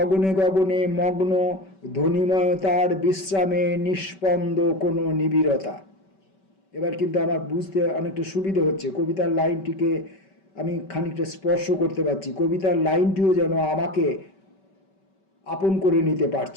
গগনে মগ্ন ধ্বনিময়তার বিশ্রামে নিষ্পন্দ কোনো নিবিড়তা। এবার কিন্তু আমার বুঝতে অনেকটা সুবিধে হচ্ছে। কবিতার লাইনটিকে আমি খানিকটা স্পর্শ করতে পারছি, কবিতার লাইনটিও যেন আমাকে আপন করে নিতে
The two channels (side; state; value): right; late; 5.2 ms